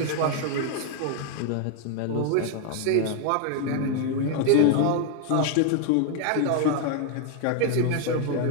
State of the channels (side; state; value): both; different; correlation 0.01